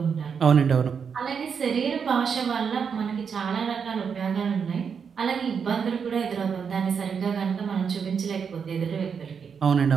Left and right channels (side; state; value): left; quieter; 6.5 dB